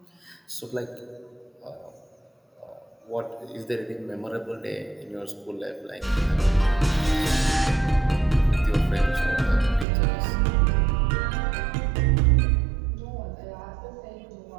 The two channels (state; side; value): drops out; left; at 9.9 s